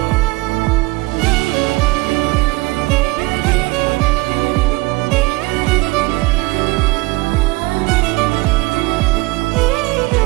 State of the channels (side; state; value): left; quieter; 22.3 dB